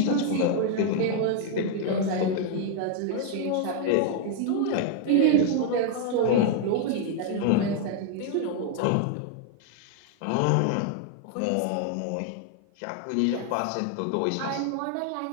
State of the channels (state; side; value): different; both; correlation 0.00